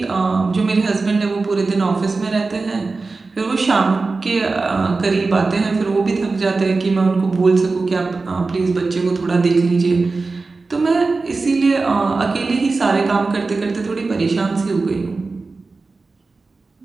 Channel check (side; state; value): left; quieter; 3.8 dB